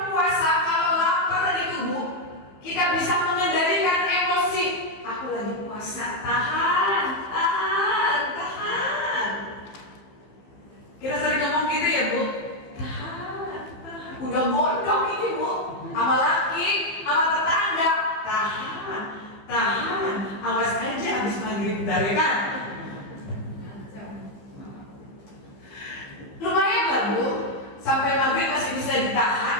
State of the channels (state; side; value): late; right; 15 ms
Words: puasa, kalau lapar itu Bu, kita bisa mengendalikan emosi. Aku lagi puasa, tahan. Kita sering ngomong gitu ya Bu, tahan. Udah bodoh ini Bu, sama laki, sama tetangga, tahan. Awas aja habis maghrib dari kan. Lumayan lah Bu, sampai maghrib masih bisa